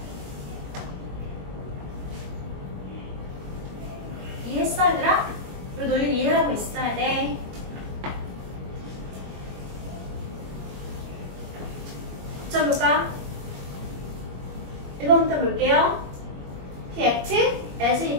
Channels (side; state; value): left; late; 21 ms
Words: 이해했어 얘들아? 이 논리 이해하고 있어야 돼. 자 볼까? 1번부터 볼게요. He acted as